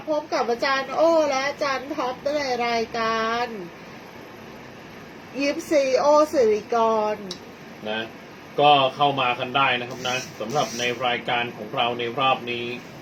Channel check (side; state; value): both; identical; correlation 1.00